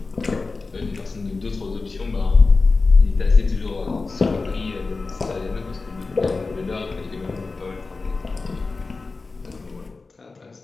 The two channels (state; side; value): quieter; right; 3.9 dB